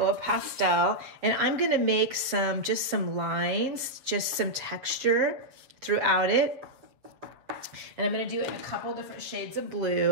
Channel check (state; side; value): late; left; 7.6 ms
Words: pastel and I'm going to make just some lines, just some texture throughout it. And I'm going to do it in a couple different shades of